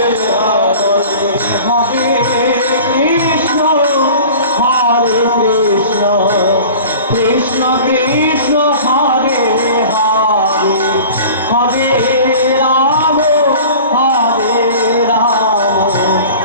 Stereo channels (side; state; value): both; inverted; correlation -0.41